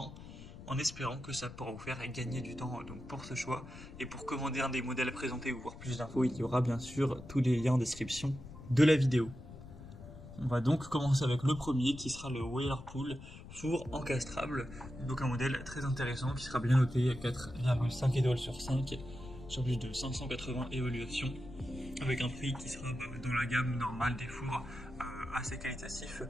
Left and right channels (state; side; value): noise; left; rumble, 15 dB below the sound